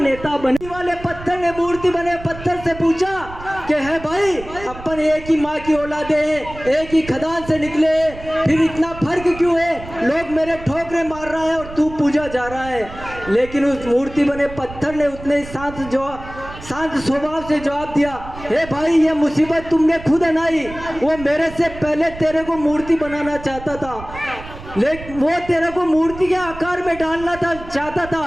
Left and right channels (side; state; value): right; noise; rumble, 15 dB below the sound